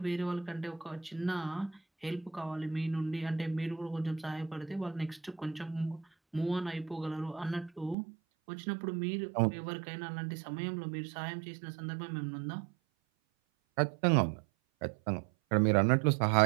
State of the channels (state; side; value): drops out; left; at 8.0 s